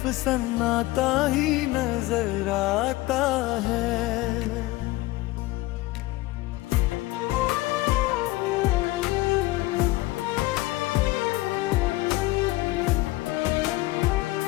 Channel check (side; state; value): right; quieter; 19.1 dB